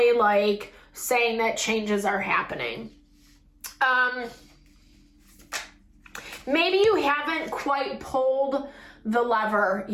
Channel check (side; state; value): both; identical; correlation 1.00